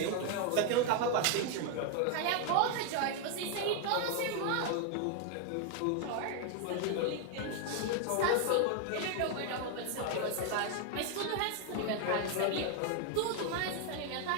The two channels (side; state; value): both; different; correlation 0.00